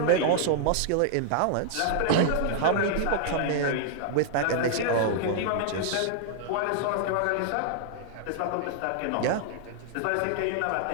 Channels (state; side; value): different; both; correlation -0.01